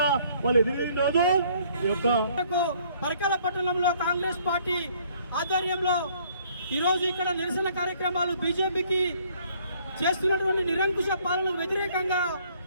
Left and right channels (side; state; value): both; inverted; correlation -0.62